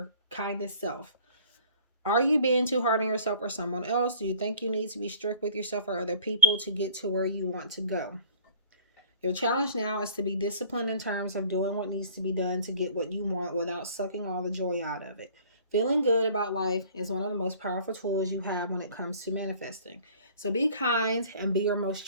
kindest self. Are you being too hard on yourself or someone else? Do you think you need to be strict with yourself or other people to get to where you want to go? Your challenge now is to be disciplined in terms of doing what needs to be done to get what you want without sucking all the joy out of it. Feeling good about life is one of the most powerful tools you have when it comes to manifesting. So be kind and be your most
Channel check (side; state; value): both; inverted; correlation -0.50